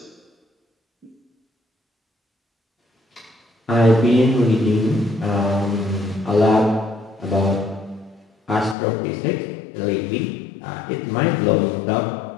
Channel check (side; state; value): right; drops out; at 8.8 s